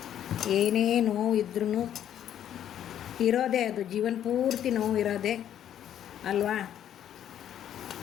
ಏನೇ ನೋವು ಇದ್ರೂ ಇರೋದೇ, ಅದು ಜೀವನ ಪೂರ್ತಿ ನೋವು ಇರೋದೇ ಅಲ್ವಾ.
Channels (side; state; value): right; quieter; 10.4 dB